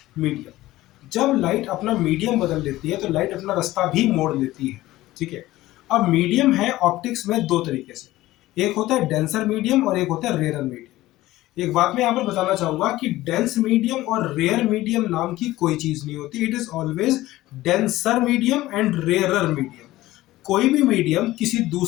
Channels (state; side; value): quieter; right; 16.8 dB